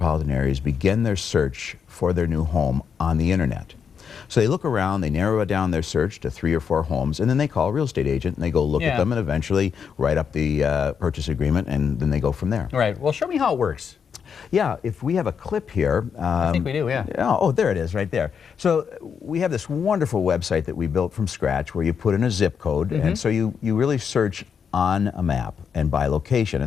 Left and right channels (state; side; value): quieter; right; 6.9 dB